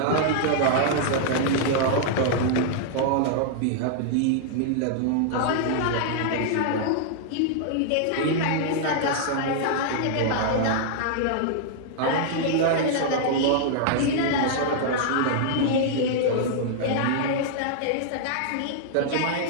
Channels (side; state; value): both; different; correlation -0.01